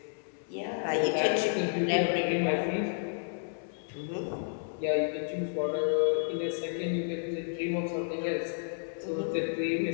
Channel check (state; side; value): silent; right; digital silence